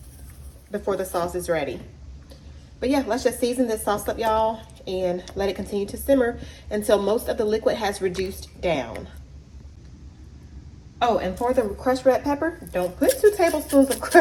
before the sauce is ready. But yeah, let's just season this sauce up, y'all, and let it continue to simmer until most of the liquid has reduced down. Oh, and for the crushed red pepper, don't put 2 tablespoons of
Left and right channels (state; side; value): identical; both; correlation 1.00